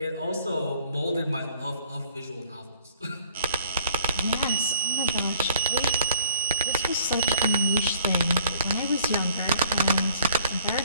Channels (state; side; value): inverted; both; correlation -0.57